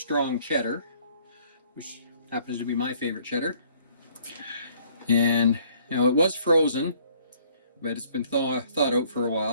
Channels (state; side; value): inverted; both; correlation -0.61